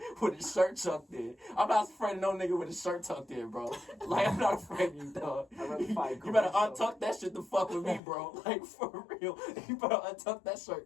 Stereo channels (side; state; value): right; drops out; at 8.0 s